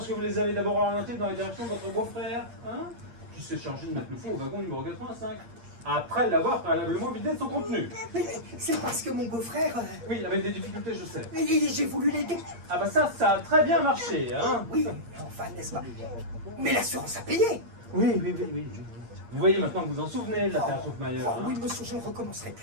que vous les avez d'abord orientées dans la direction de votre beau-frère, hein, qui s'est chargé de mettre le fou au wagon numéro 85, après l'avoir préalablement vidé de son contenu. Mais c'est parce que mon beau-frère... Oui, avec des difficultés, je sais. J'ai voulu l'aider. Ah bah ça a très bien marché, hein. Oui, enfin, n'est-ce pas? Mais l'assurance a payé. Oui. Vous voyez maintenant que vous en souvenez de l'affaire Schtroumpfmayer. Oh, Hein. oui, monsieur, je ne recommencerai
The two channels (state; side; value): late; left; 8.6 ms